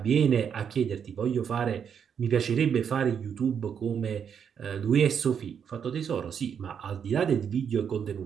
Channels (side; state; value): left; quieter; 7.6 dB